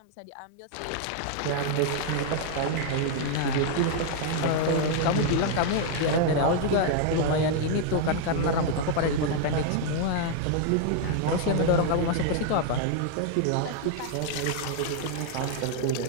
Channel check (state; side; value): different; both; correlation 0.00